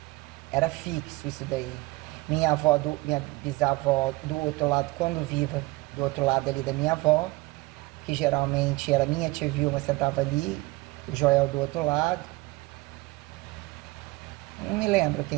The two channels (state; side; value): quieter; left; 21.8 dB